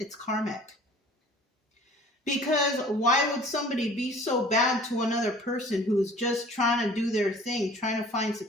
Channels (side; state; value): both; normal; correlation 0.49